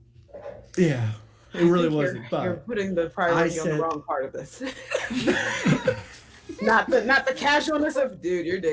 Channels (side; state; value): both; identical; correlation 1.00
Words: Yeah, it really wasn't. You're But putting the priority on the wrong part of this. not the casualness of, dude, your